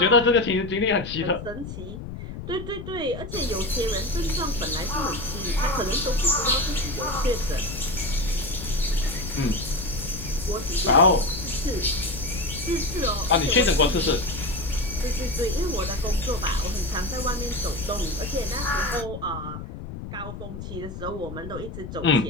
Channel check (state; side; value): noise; left; rumble, 10 dB below the sound